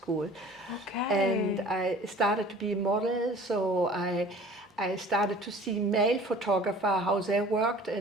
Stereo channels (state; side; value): normal; both; correlation 0.47